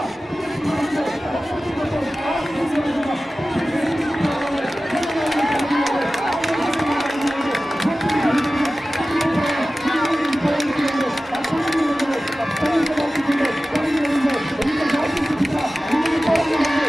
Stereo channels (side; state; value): both; normal; correlation 0.96